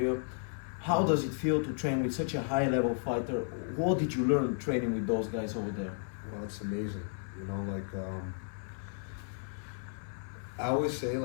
How does it feel to train with such a high level fighter? What did you learn training with those guys over there? Well, it's amazing. I always say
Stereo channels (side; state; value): right; silent; 55 dB below the other